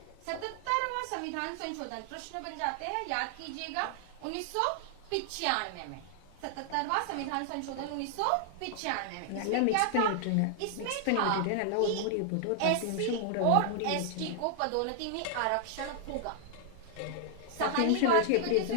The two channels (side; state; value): both; different; correlation 0.00